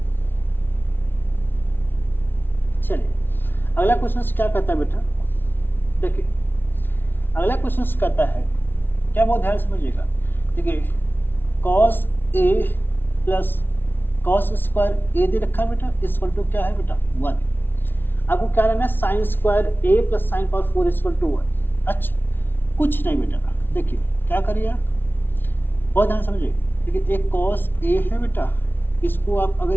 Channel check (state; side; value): late; right; 0.10 ms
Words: चलिए अगला क्वेश्चन क्या कहता है बेटा, देखिए अगला क्वेश्चन कहता है, क्या बहुत ध्यान समझिएगा, देखिए cos a plus cos square a दे रखा है बेटा, इक्वल टू क्या है बेटा 1। आपको क्या लेना है, sine square a plus sine power 4 equal to 1। अच्छा कुछ नहीं बेटा, देखिए क्या करिए आप, बहुत ध्यान समझिए, देखिए एक cos a है बेटा, इसको आप अगर